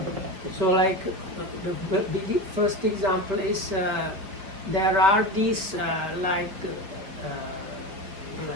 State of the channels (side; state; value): left; late; 5.1 ms